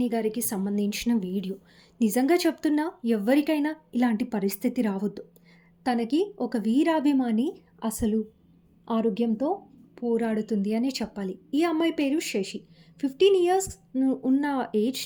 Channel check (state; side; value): identical; both; correlation 1.00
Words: గారికి సంబంధించిన వీడియో. నిజంగా చెప్తున్నా, ఎవ్వరికైనా ఇలాంటి పరిస్థితి రావద్దు. తనకి ఒక వీరాభిమాని అసలు ఆరోగ్యంతో పోరాడుతుంది అనే చెప్పాలి. ఈ అమ్మాయి పేరు శశి. 15 ఇయర్స్ ఉన్న